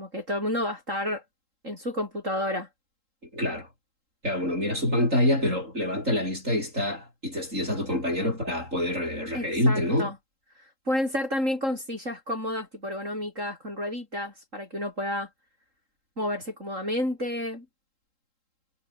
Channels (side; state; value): left; late; 3.7 ms